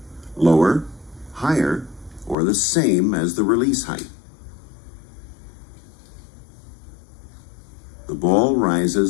Lower, higher, or the same as the release height. The ball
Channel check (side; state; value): right; drops out; at 2.4 s